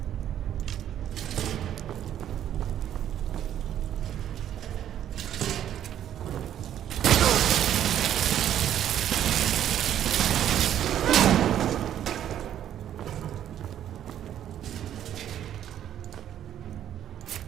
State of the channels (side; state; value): left; quieter; 10.7 dB